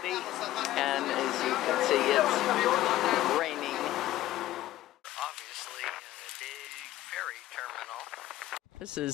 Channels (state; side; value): quieter; right; 14.9 dB